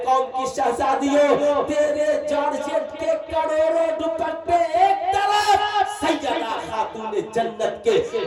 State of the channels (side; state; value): both; identical; correlation 1.00